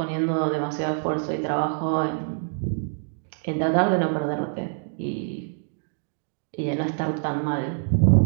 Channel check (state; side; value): silent; left; digital silence